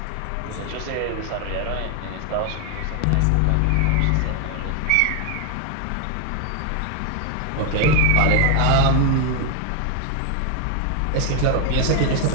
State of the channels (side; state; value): both; different; correlation 0.00